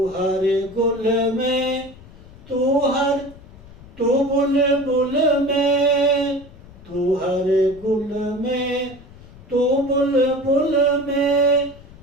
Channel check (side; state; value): left; noise; rumble, 20 dB below the sound